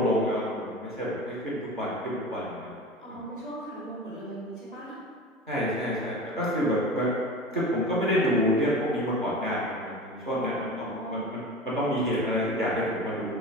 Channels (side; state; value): both; normal; correlation 0.34